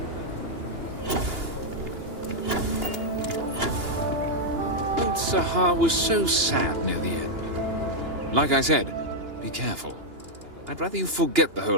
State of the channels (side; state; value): left; late; 2.9 ms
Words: Old Sahar was so sad near the end. Like I said, be careful. I'd rather you forget the